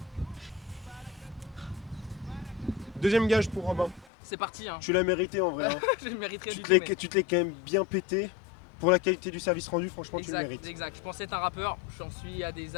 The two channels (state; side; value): drops out; right; at 4.0 s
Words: Deuxième gage pour Robin. C'est parti, hein. Tu l'as mérité en vrai. hein. Je le mériterais Tu du te tout. l'es mais- tu te l'es quand même bien pété. Pour la qualité du service rendu, franchement, tu le Exact, mérites. exact. Je pensais être un rappeur, j'en suis à des